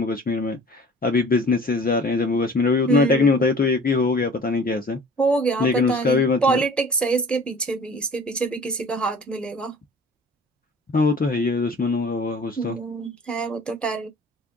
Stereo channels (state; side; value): normal; both; correlation 0.46